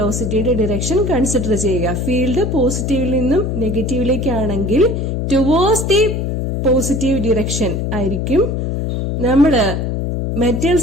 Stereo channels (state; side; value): noise; left; hum, 1 dB below the sound